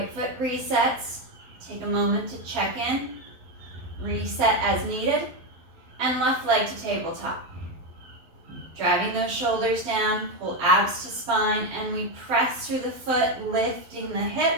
foot resets. Take a moment to check in. Reset as needed, and left leg to tabletop. Driving those shoulders down, pull abs to spine, and we press through the foot, lifting the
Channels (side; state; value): left; late; 12 ms